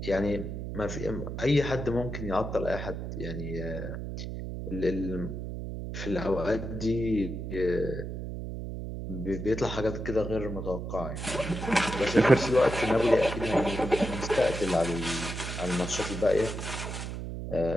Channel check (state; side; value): noise; right; hum, 6 dB below the sound